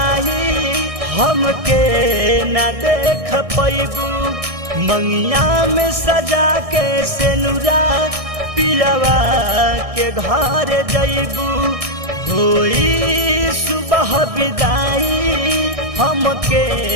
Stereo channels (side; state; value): left; late; 1.6 ms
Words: हमके न देख पैबू मंगिया में सजा के सिनुरा पियावा के घर जइबू होई सुबह विदाई हमके